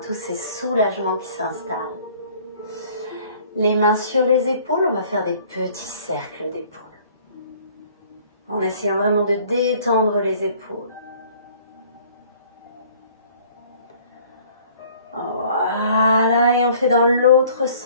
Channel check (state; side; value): inverted; both; correlation -0.55